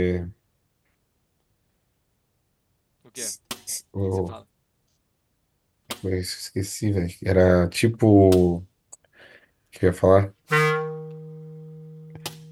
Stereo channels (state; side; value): identical; both; correlation 1.00